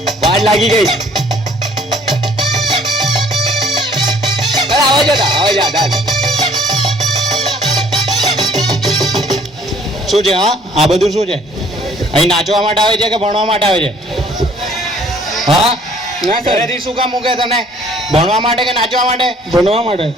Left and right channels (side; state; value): both; normal; correlation 0.58